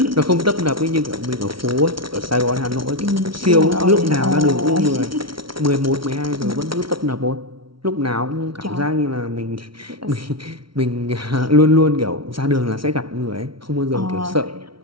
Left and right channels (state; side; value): late; left; 0.74 ms